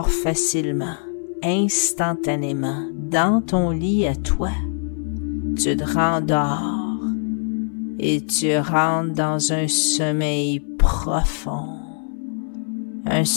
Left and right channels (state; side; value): silent; right; 60 dB below the other